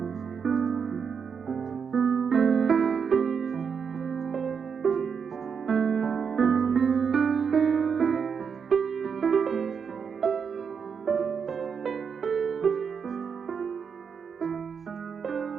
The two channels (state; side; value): quieter; left; 6.4 dB